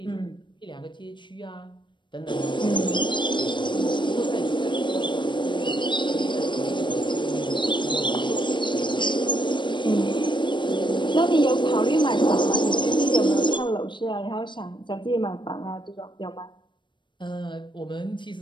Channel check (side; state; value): right; late; 0.23 ms